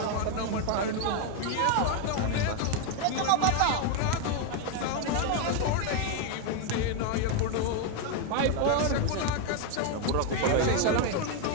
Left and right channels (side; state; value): both; different; correlation 0.01